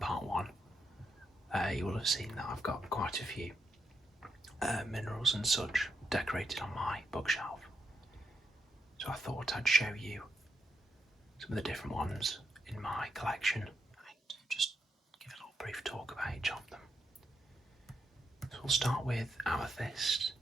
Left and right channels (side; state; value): both; normal; correlation 0.82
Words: 1, you will have seen that I've got quite a few minerals and such decorated on my bookshelf. So I thought I'd show you some of the different ones in my collection and just give a little brief talk about each of them. So we'll start with amethyst,